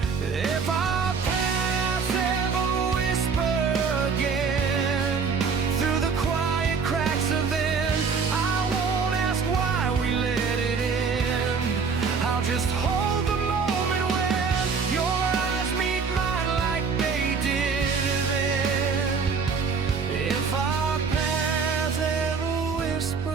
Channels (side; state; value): left; quieter; 5.4 dB